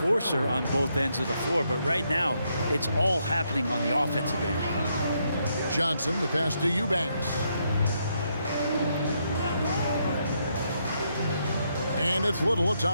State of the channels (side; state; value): both; inverted; correlation -0.77